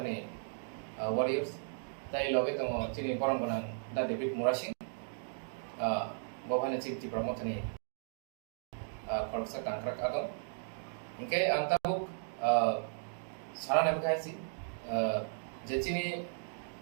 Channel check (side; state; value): left; silent; digital silence